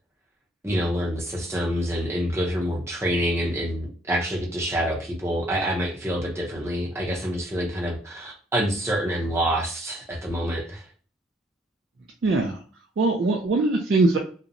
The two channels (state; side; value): normal; both; correlation 0.64